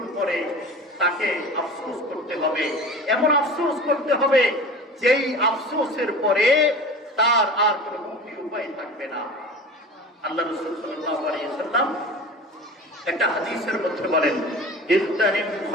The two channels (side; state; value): both; normal; correlation 0.36